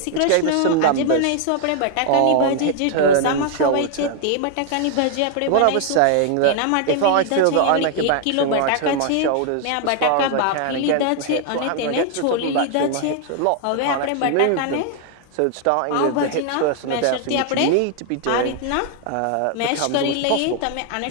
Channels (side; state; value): both; different; correlation 0.00